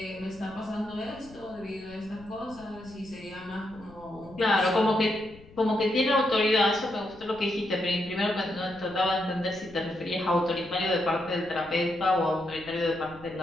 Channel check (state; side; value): noise; left; rumble, 22 dB below the sound